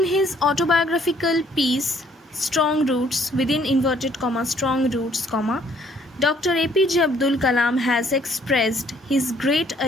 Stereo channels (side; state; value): both; normal; correlation 0.63